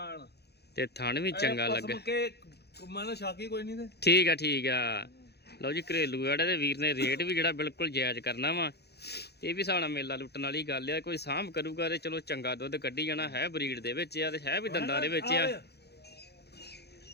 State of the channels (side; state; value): right; late; 0.48 ms